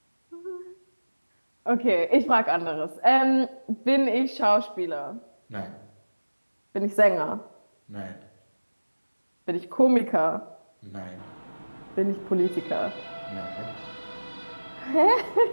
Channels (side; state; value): both; inverted; correlation -1.00